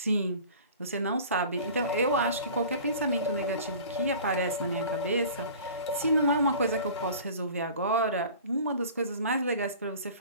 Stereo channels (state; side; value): inverted; both; correlation -0.43